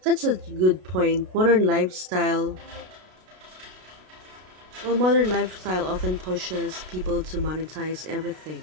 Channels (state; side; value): late; left; 33 ms